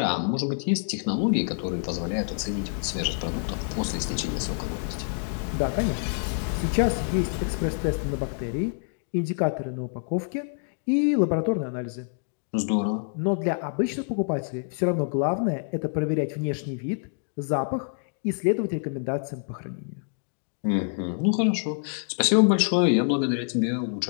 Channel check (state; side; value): silent; right; digital silence